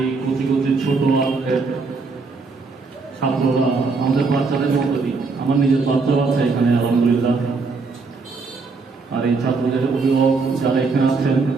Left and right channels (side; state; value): left; quieter; 4.3 dB